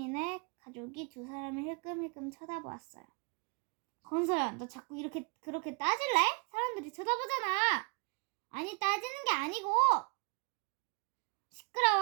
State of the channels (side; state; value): left; quieter; 34.0 dB